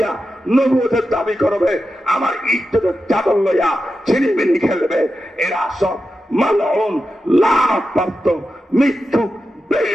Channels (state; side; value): normal; both; correlation 0.90